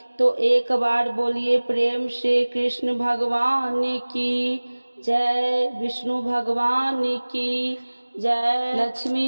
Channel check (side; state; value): both; inverted; correlation -1.00